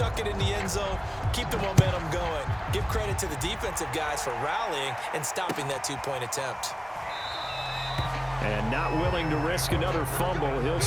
it in the end zone, keep the momentum going. Give credit to the defensive guys for rallying and stopping that 2-point attempt. And not willing to risk another fumble. He'll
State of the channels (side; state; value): both; identical; correlation 1.00